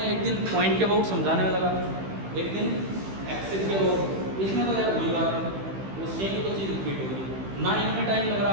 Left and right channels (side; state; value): left; late; 15 ms